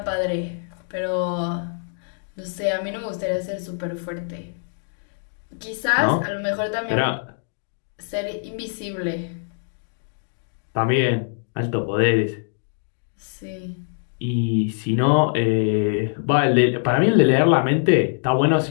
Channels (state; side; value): silent; right; digital silence